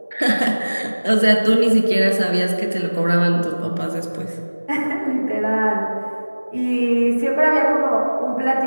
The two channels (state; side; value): inverted; both; correlation -1.00